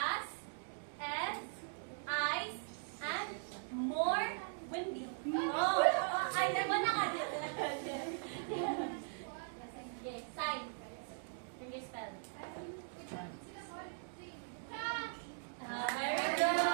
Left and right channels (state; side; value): silent; left; digital silence